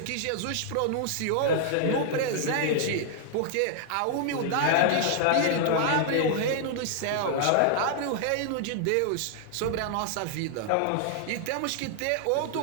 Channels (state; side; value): different; both; correlation -0.01